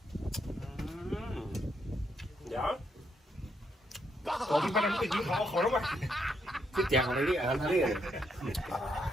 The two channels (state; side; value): normal; both; correlation 0.77